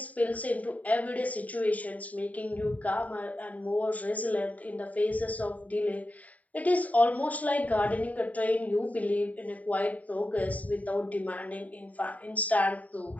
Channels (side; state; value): right; late; 0.071 ms